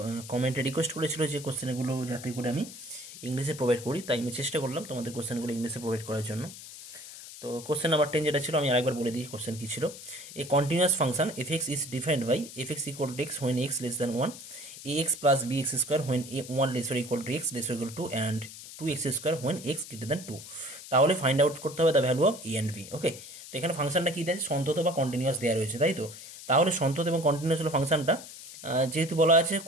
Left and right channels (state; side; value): noise; left; hiss, 14 dB below the sound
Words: কমেন্টে রিকোয়েস্ট করেছিল যে কোশ্চেনগুলো যাতে করে আমি ইংলিশে প্রোভাইড করি, তাই আমি চেষ্টা করলাম তোমাদের কোশ্চেনগুলো ইংলিশে প্রোভাইড করার জন্য। তো কোশ্চেন নাম্বার 10 যেটা ছিল আমি আরেকবার বলে দিই কোশ্চেন কি ছিল। A continuous function f x is defined by f x equal to x when x less than 1, a x plus b x square when a 1 lesser equal to x lesser equal to and 2x square when x greater than 2। তাহলে find out করতে হবে the value of a and b. Okay, তো এখানে ফাংশনটা কি দেয়, সন্তত বা continuous দেওয়া রয়েছে, তাই তো। তাহলে সন্তত এবং কন্টিনিউয়াস হলো ফাংশনটা, যেহেতু বলা আছে